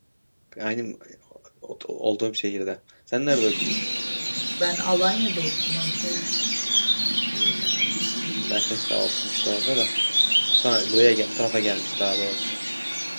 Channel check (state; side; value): inverted; both; correlation -1.00